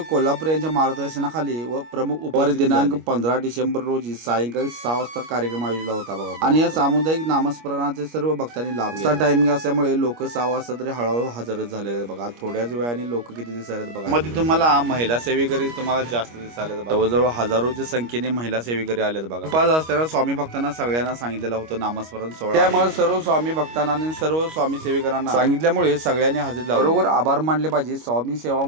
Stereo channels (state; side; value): late; left; 25 ms